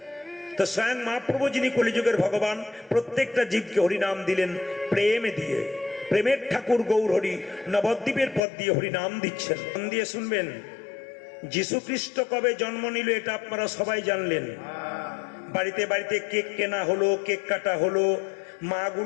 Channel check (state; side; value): drops out; right; at 8.4 s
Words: তো স্বয়ং মহাপ্রভু যিনি কলিযুগের ভগবান, প্রত্যেকটা জীবকে হরিনাম দিলেন প্রেমে দিয়ে। প্রেমের ঠাকুর গৌর হরি নবদ্বীপের পথ দিয়ে হরিনাম দিচ্ছেন। মন দিয়ে শুনবেন। যীশু খ্রিস্ট কবে জন্ম নিল এটা আপনারা সবাই জানলেন। বাড়িতে বাড়িতে কেক কেনা হলো, কেক কাটা হলো,